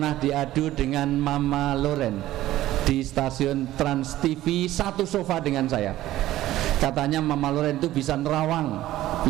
diadu dengan Mama Loren di stasiun Trans TV, satu sofa dengan saya. Katanya Mama Loren itu bisa nerawang,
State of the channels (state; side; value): quieter; left; 14.8 dB